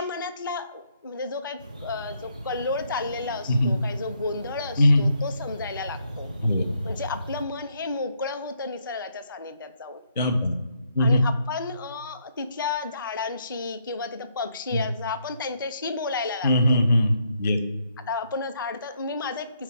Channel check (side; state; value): both; inverted; correlation -0.73